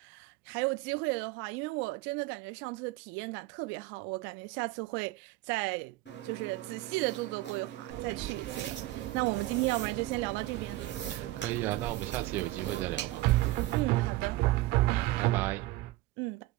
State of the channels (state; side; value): quieter; left; 17.7 dB